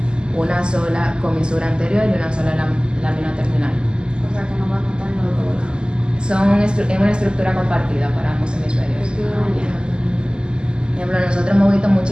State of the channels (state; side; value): late; left; 0.048 ms